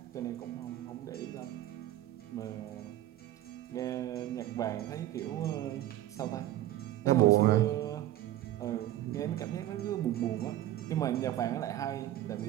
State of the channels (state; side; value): quieter; left; 13.6 dB